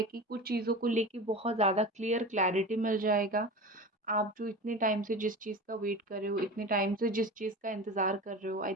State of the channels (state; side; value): normal; both; correlation 0.31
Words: कि कुछ चीज़ों को लेके बहुत ज़्यादा क्लैरिटी मिल जाएगा। आप जो इतने टाइम से जिस चीज़ का वेट कर रहे हो, इतने टाइम से जिस चीज़ का इंतज़ार कर रहे हो, आई